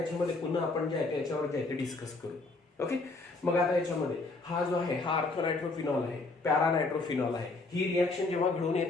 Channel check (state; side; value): quieter; right; 3.4 dB